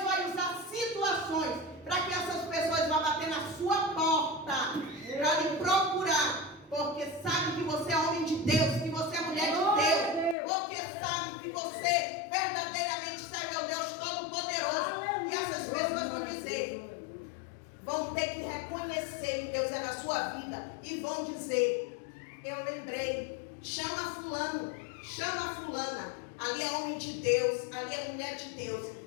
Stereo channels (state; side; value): drops out; right; at 10.4 s